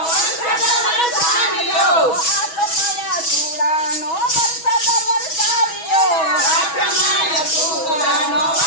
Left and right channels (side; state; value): right; late; 6.2 ms